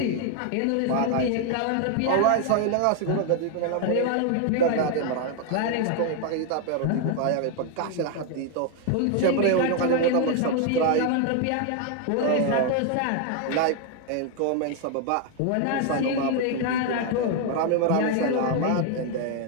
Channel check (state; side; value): different; both; correlation 0.00